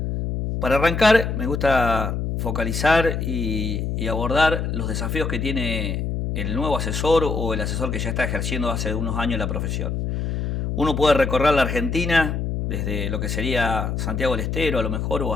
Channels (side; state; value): left; noise; hum, 2 dB below the sound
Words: Para arrancar, me gusta focalizar y abordar los desafíos que tiene el nuevo asesor o el asesor que ya está ejerciendo hace unos años la profesión. Uno puede recorrer la Argentina desde lo que sería Santiago del Estero a lo mejor o